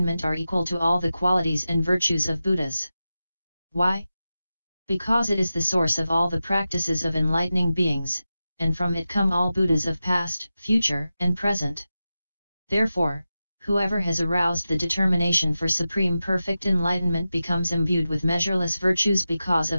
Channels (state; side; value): inverted; both; correlation -0.92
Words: are equal to all the qualities and virtues of Buddhas. Why? Because it is the source of all the practices of enlightening beings, and from it come all Buddhas of past, future, and present. Therefore, whoever has aroused the determination for supreme perfect enlightenment becomes imbued with measureless virtues because